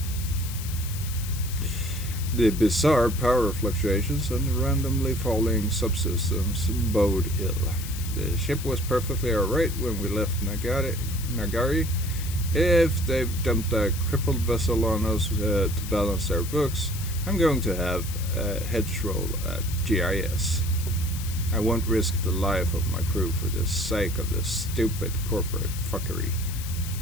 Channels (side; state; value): left; noise; hiss, 11 dB below the sound